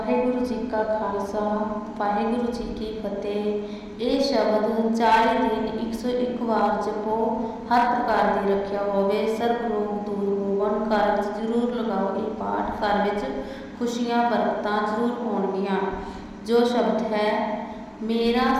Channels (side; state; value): both; identical; correlation 1.00